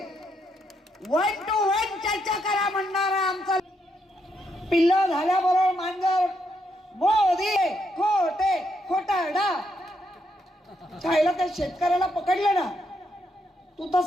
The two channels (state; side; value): normal; both; correlation 0.78